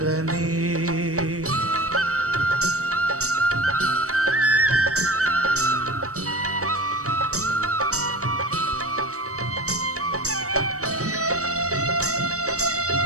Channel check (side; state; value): left; late; 0.65 ms